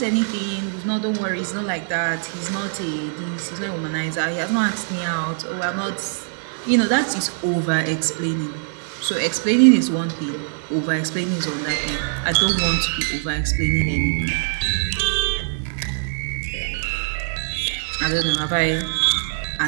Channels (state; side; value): silent; left; 63 dB below the other